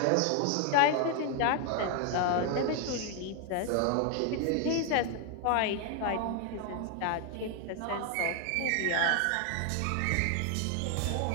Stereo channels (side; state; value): both; different; correlation 0.00